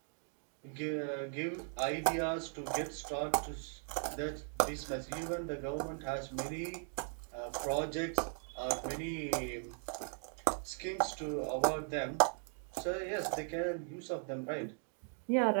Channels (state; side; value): silent; left; 52 dB below the other